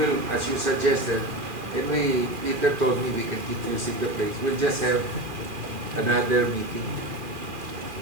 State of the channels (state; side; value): late; left; 2.4 ms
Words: as you suggested, and Peter told me we can keep using the place. We'll just have another meeting.